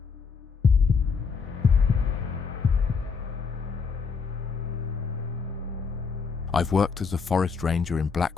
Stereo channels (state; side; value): quieter; right; 5.4 dB